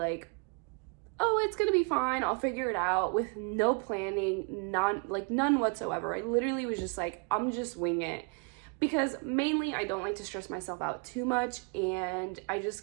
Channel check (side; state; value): left; quieter; 34.8 dB